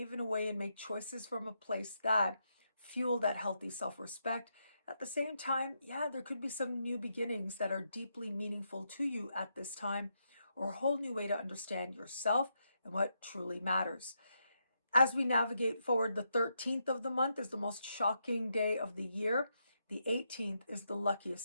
in a way and make choices from a place that fuel that healthy self-respect. At the same time, there could be some new beginnings that are deeply meaningful to you at this time, or a whole new way to understand yourself and what truly matters. As we navigate forward, the 13th of the month is the most shocking day of the year. The 18th is the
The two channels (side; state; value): both; inverted; correlation -0.81